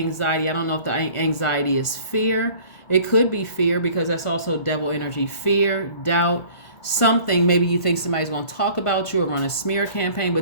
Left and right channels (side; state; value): right; late; 1.4 ms